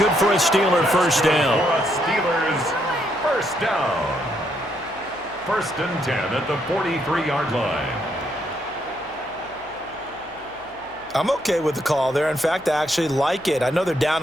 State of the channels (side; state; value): left; noise; hum, 26 dB below the sound